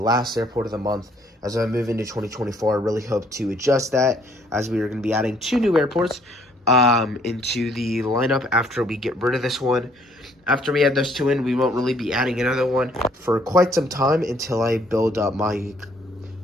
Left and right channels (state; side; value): normal; both; correlation 0.64